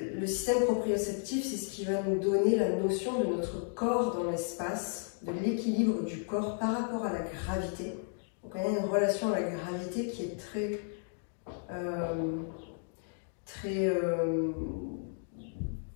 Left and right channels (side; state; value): right; silent; 56 dB below the other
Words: le système proprioceptif, c'est ce qui va nous donner la notion de notre corps dans l'espace, de l'équilibre du corps par rapport à la gravité. Donc on a une relation à la gravité qui est